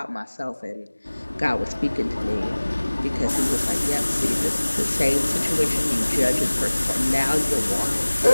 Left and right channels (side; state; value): both; inverted; correlation -1.00